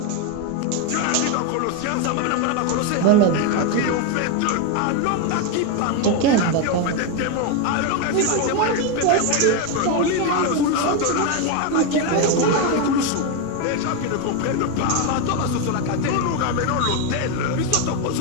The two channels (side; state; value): both; different; correlation 0.02